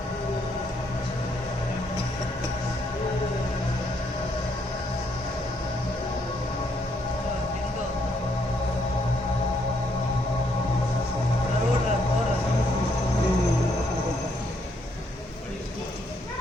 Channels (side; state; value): both; normal; correlation 0.73